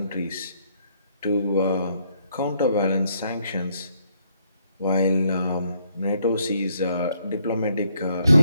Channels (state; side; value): inverted; both; correlation -0.71